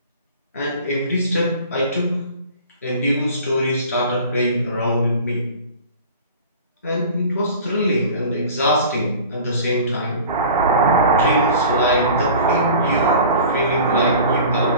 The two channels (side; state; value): both; inverted; correlation -0.42